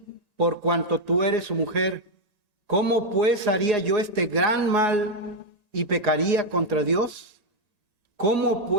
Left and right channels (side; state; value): right; late; 1.9 ms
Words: por cuanto tú eres su mujer. ¿Cómo pues haría yo este gran mal y pecaría contra Dios? ¿Cómo